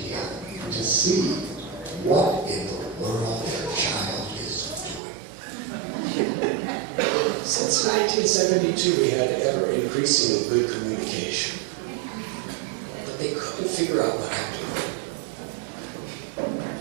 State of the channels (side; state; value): left; drops out; at 5.0 s